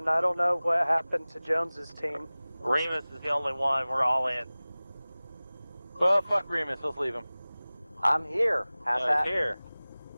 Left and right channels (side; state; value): both; inverted; correlation -0.99